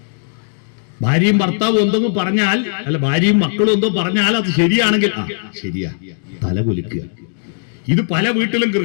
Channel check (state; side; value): silent; right; digital silence